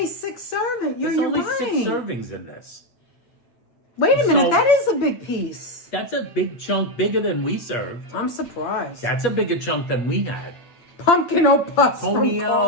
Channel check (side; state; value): right; late; 8.4 ms